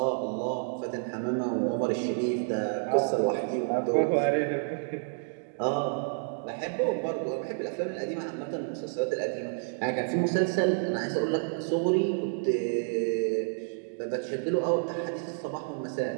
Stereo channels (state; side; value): silent; left; digital silence